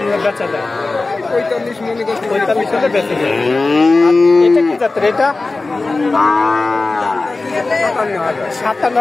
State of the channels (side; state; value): right; quieter; 3.4 dB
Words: বেচা যায়? 45 হলে বেচে যায়। এটা কি জাতের? এটা